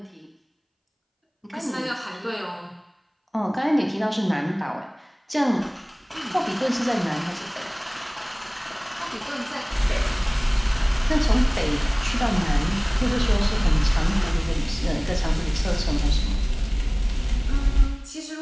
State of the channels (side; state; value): both; identical; correlation 1.00